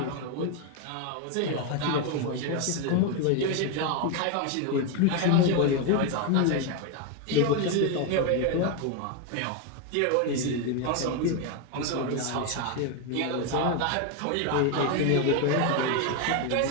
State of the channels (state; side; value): different; both; correlation 0.02